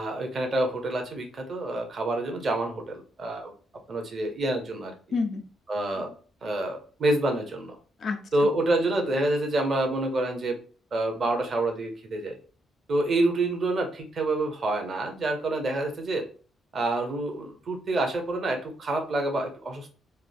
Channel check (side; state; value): both; normal; correlation 0.78